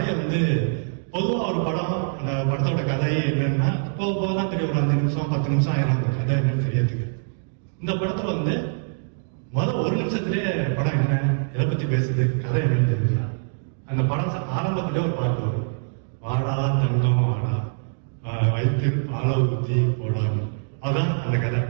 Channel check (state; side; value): silent; left; digital silence